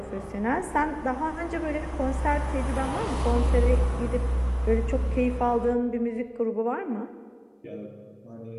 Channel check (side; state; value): both; identical; correlation 1.00